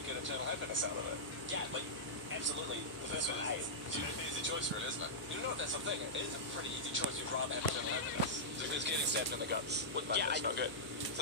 eternal happiness out of it. Yeah, like, absolutely. The first one, A. It's an easy choice, really, isn't it? You know, that's the thing. It is a pretty easy choice. You'd rather have eternal happiness. Because getting stabbed in the guts would make it not good.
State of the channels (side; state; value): both; normal; correlation -0.12